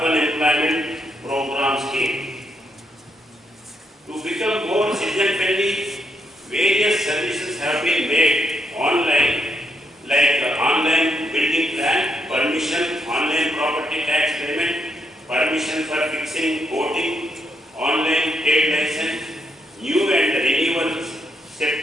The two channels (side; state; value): both; normal; correlation 0.78